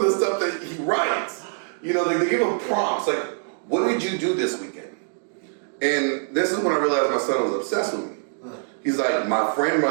the stuff that he writes, You know, they give them prompts like, what did you do this weekend? And this is when I realized my son was obsessed with me. He's like, my friend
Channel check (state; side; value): silent; left; digital silence